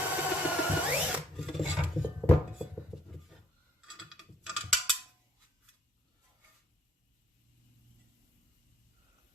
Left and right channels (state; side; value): normal; both; correlation 0.65